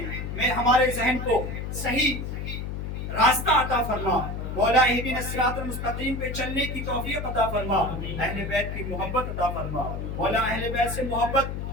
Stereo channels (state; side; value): noise; left; hum, 5 dB below the sound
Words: ہمارے ذہن کو صحیح راستہ عطا فرما. مولا اہدنا الصراط المستقیم پہ چلنے کی توفیق عطا فرما. اہل بیت کی محبت عطا فرما. مولا اہل بیت سے